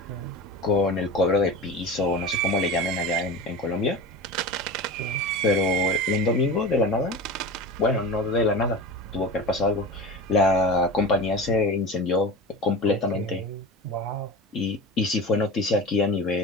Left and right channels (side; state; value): both; normal; correlation 0.30